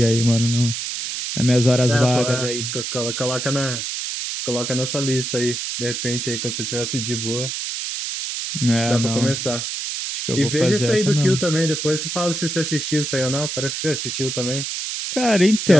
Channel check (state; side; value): noise; right; hiss, 4 dB below the sound